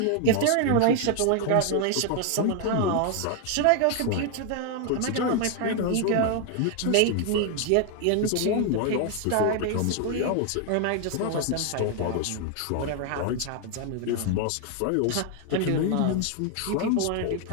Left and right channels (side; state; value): both; different; correlation 0.00